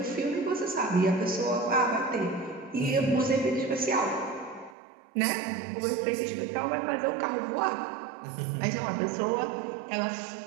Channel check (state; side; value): drops out; left; at 4.8 s